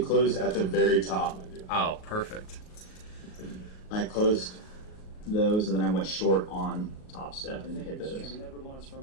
closed at the very top. Oh, perfect. I closed those and then I went short on Top Step and hit those.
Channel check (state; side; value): late; right; 38 ms